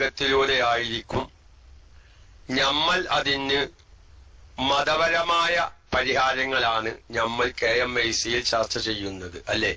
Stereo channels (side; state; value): both; identical; correlation 1.00